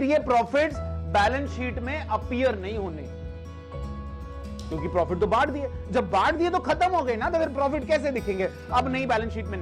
ये प्रॉफिट्स बैलेंस शीट में अपीयर नहीं होने, क्योंकि प्रॉफिट तो बांट दिए। जब बांट दिए तो खत्म हो गए ना, तो फिर प्रॉफिट कैसे दिखेंगे? अब नई बैलेंस शीट में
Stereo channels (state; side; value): identical; both; correlation 1.00